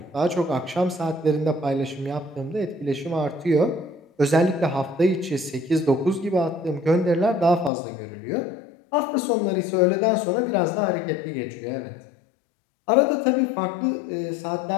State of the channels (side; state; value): right; drops out; at 7.7 s